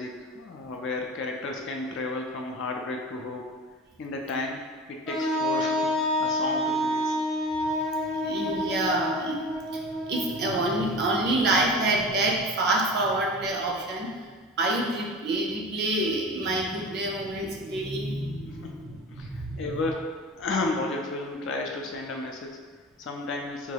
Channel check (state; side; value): normal; both; correlation 0.34